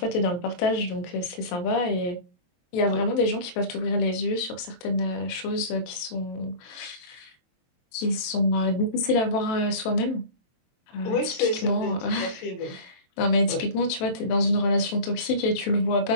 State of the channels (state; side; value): late; right; 23 ms